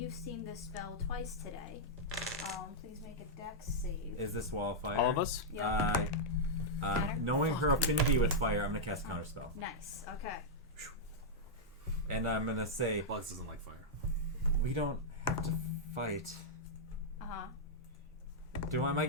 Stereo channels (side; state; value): both; normal; correlation -0.06